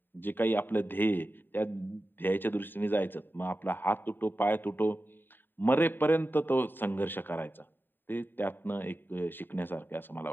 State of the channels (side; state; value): right; late; 0.094 ms